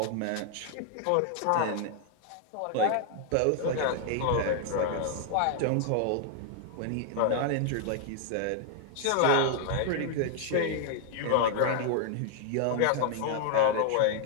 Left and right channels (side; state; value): both; different; correlation 0.00